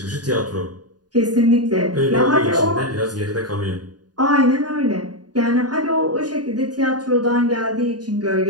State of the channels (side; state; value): left; late; 0.69 ms